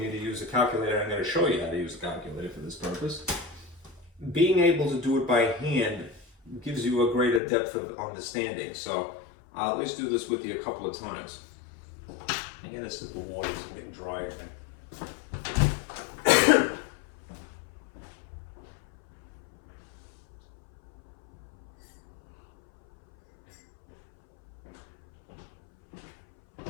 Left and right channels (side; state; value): right; drops out; at 7.4 s